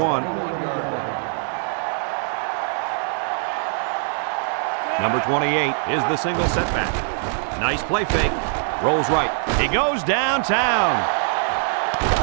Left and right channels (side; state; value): left; silent; 57 dB below the other